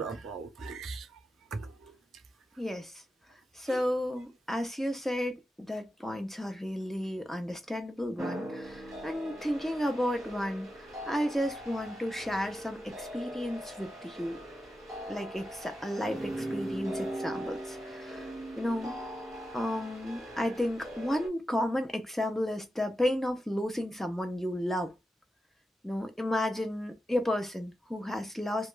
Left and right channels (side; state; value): both; normal; correlation 0.90